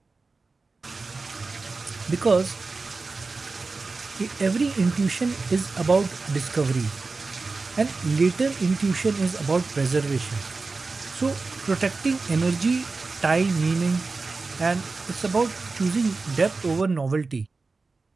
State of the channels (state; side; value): quieter; left; 4.0 dB